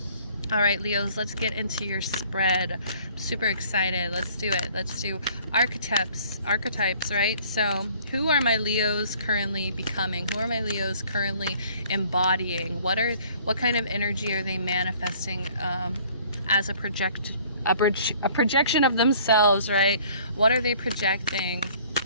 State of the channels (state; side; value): inverted; both; correlation -0.56